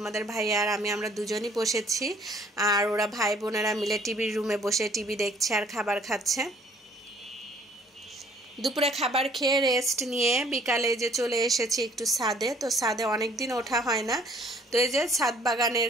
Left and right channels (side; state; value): both; normal; correlation 0.59